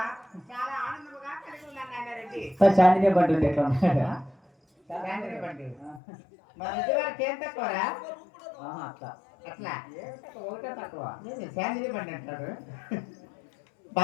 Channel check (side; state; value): right; drops out; at 6.0 s